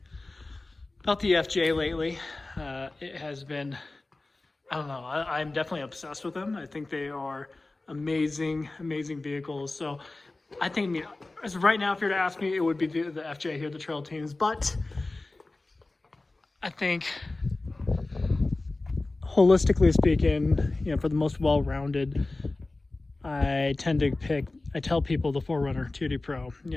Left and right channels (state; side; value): quieter; right; 3.1 dB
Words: FJ lately. It has been, I don't know, I'm definitely obsessed with them. I think they are amazing vehicles. So I think, I mean, as right now, if you were to ask me, it would be the FJ here, the Trail Teams. But I think, holistically speaking, you know, for the most well-rounded, I tell people the 4Runner TRD Pro,